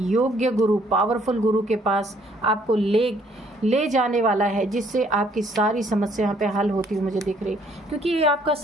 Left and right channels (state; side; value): normal; both; correlation 0.64